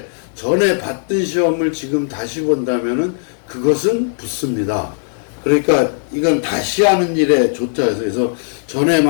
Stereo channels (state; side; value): silent; right; digital silence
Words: 전에 봤던 시험을 지금 다시 본다면은 그것은 붙습니다. 그러니까 이건 다시 하는 일에 좋다 해서, 그래서 전에